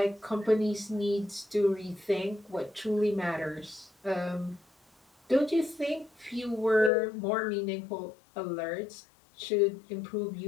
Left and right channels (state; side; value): drops out; right; at 6.9 s